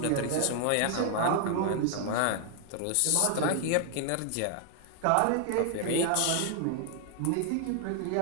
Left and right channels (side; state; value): both; different; correlation 0.00